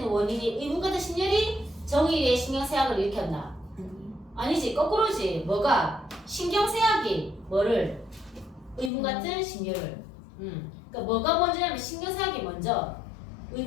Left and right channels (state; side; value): drops out; right; at 8.9 s